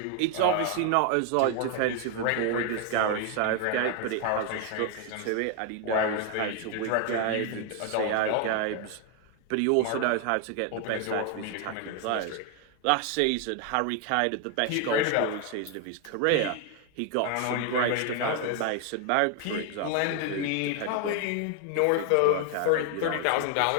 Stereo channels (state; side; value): different; both; correlation 0.00